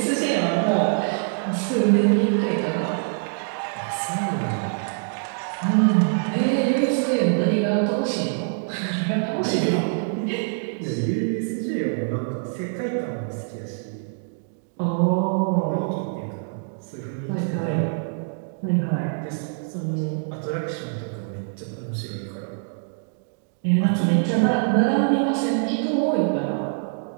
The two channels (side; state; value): left; silent; digital silence